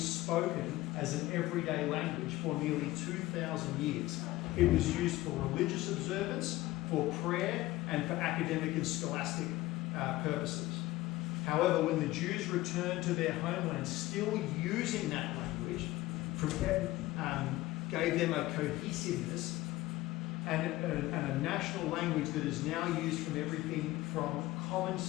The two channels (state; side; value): quieter; right; 17.7 dB